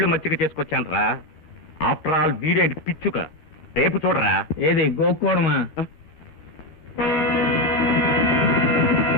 మచ్చిక చేసుకొచ్చాను రా. ఆఫ్టర్ ఆల్ వీడేంటి పిచ్చుక. రేపు చూడరా. ఏది గోక్కోవడమా?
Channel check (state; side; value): late; right; 13 ms